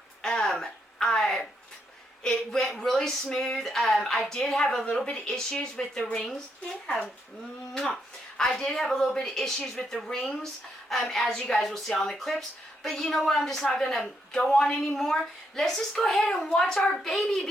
it went really smooth. I did have a little bit of issues with the rings. Yeah. I did have a little bit of issues with the rings, as you guys will see on the clips. But you know what? I'm just not going to go on anymore. Let's just go ahead and watch our baby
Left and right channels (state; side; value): normal; both; correlation 0.78